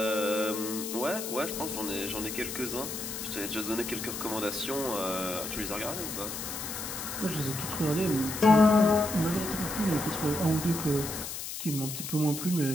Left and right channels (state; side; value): noise; left; hiss, 6 dB below the sound